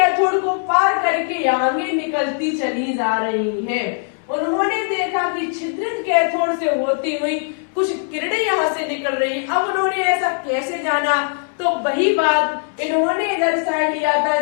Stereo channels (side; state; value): right; silent; 66 dB below the other